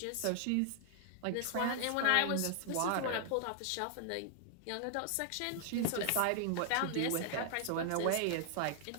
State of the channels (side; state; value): both; different; correlation 0.00